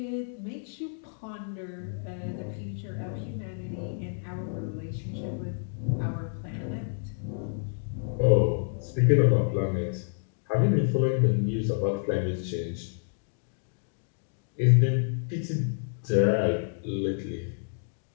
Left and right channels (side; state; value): right; silent; digital silence